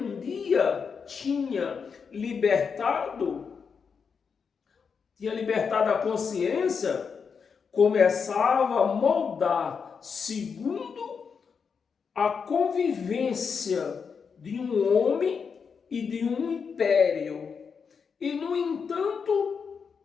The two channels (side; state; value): right; quieter; 6.0 dB